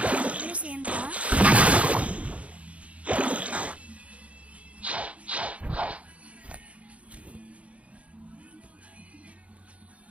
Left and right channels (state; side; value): late; left; 0.064 ms